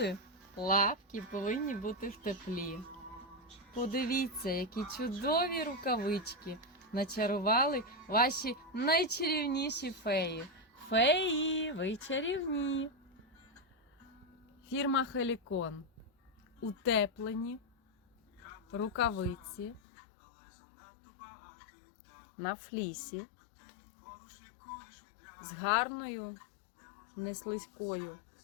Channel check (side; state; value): right; drops out; at 19.8 s